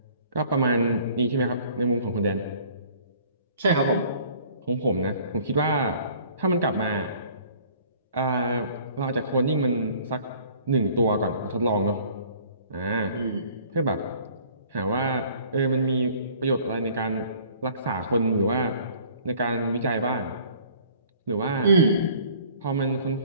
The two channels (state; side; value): inverted; both; correlation -0.53